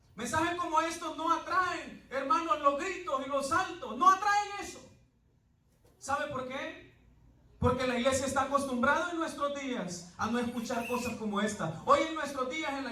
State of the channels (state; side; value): identical; both; correlation 1.00